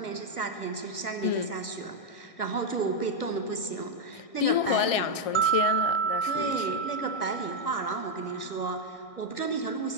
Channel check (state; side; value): late; right; 1.6 ms